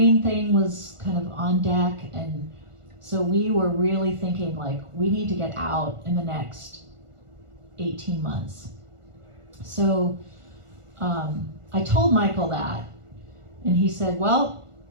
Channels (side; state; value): left; late; 1.4 ms